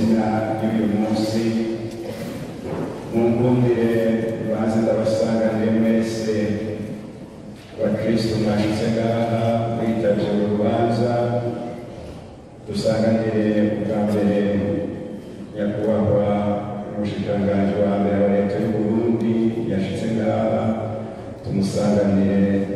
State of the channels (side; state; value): both; identical; correlation 1.00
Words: y'uyu munsi, munkundire baze ndabasanganire mwese bakristo mwashitse ngaha mwitavye urubanza, dusanganire ubwa mbere nyakubahwa umushikiranganji wa mbere wa leta y'u Burundi yashitse ngaha, tumusanganire